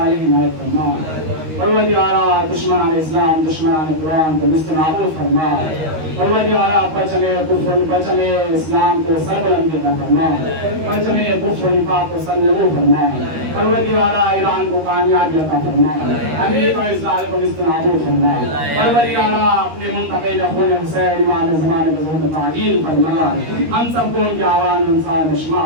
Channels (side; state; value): left; late; 13 ms